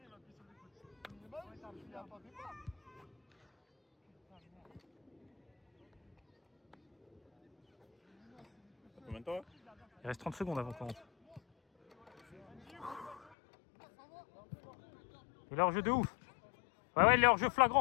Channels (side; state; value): right; drops out; at 13.3 s